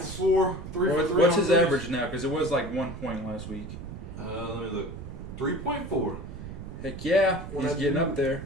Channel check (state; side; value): noise; right; rumble, 10 dB below the sound